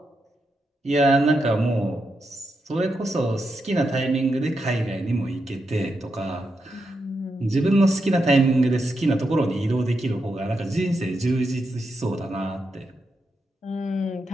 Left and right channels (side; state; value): both; normal; correlation 0.85